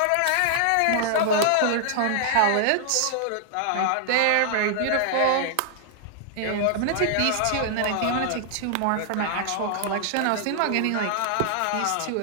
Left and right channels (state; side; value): different; both; correlation -0.01